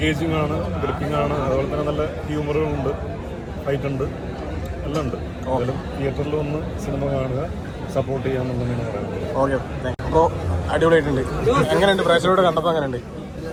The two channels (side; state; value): both; identical; correlation 1.00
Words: ആണ്, ഗ്രിപ്പിംഗ് ആണ്, അതുപോലെ തന്നെ നല്ല ഹ്യൂമറുകളുണ്ട്, ഫൈറ്റ് ഉണ്ട്, എല്ലാം ഉണ്ട്. എന്തായാലും തിയേറ്ററിൽ വന്ന് സിനിമ കാണുക, സപ്പോർട്ട് ചെയ്യാമെന്നുള്ളതാണ് പറയുന്നത്. ഓക്കെ, അപ്പോൾ അടിപൊളിയായിട്ടുണ്ട്. എങ്ങനെയുണ്ട് പ്രേക്ഷകരോട് കണ്ടപ്പോൾ? എങ്ങനെയുണ്ട്?